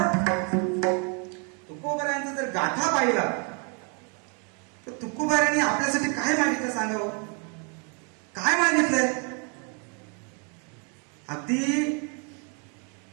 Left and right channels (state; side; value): quieter; left; 37.3 dB